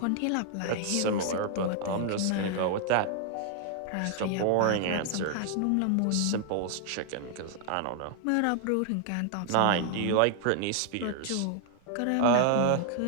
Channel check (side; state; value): both; different; correlation 0.00